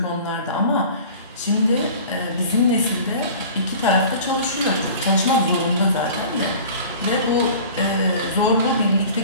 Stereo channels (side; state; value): both; inverted; correlation -0.42